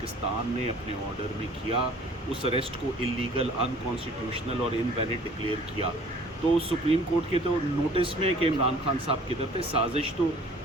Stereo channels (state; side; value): normal; both; correlation 0.51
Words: ने अपने ऑर्डर में किया। उस अरेस्ट को इलीगल, अनकॉन्स्टिट्यूशनल और इनवैलिड डिक्लेयर किया। तो सुप्रीम कोर्ट के तो नोटिस में कि इमरान खान साहब किधर थे, साजिश तो